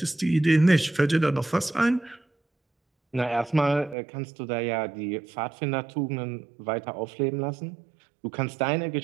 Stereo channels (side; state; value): left; drops out; at 4.0 s